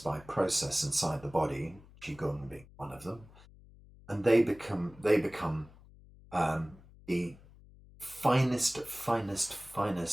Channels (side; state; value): left; noise; hum, 23 dB below the sound